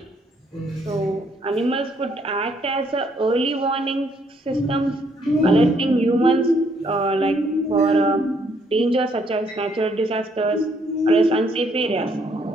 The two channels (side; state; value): both; normal; correlation 0.69